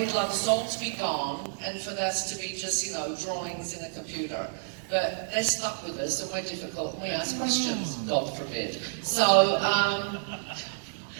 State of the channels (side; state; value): left; silent; digital silence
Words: love us all to be gone, and for us to be just, you know, drawings in a computer. But they're stuck with us, and we're difficult, and we ask questions, God forbid. So